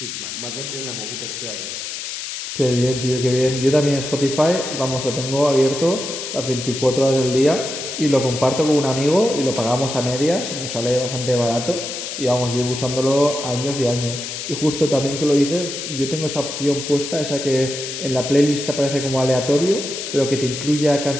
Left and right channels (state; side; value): noise; left; hiss, 7 dB below the sound